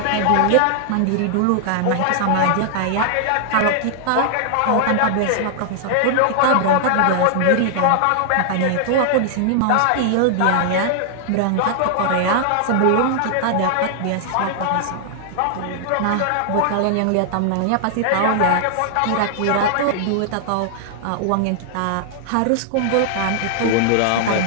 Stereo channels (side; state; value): both; different; correlation 0.00